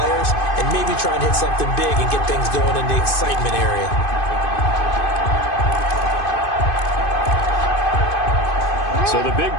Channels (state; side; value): late; right; 2.5 ms